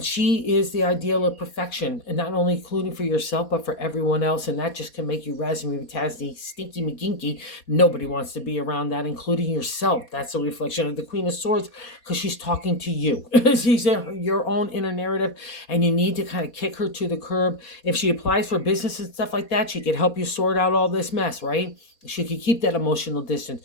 is the ideal of perfection, and not only including for yourself, but for everyone else. And that just can make you raspberry tasty, stinky McGinky. Nobody wants to be around that, including yourself. That's a reflection of the Queen of Swords, because she's talking to you. She's your own inner narrative, and you need to kind of kick her to the curb. If she applies for business and stuff like that, she could help you sort out all this mess, right? She could keep that emotional distance.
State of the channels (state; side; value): late; right; 4.2 ms